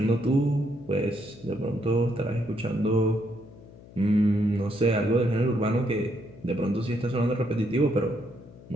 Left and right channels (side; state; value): left; noise; hum, 20 dB below the sound